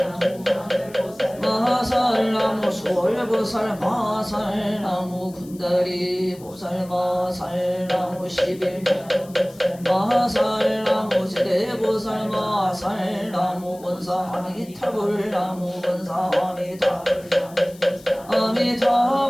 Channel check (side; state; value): left; noise; hiss, 23 dB below the sound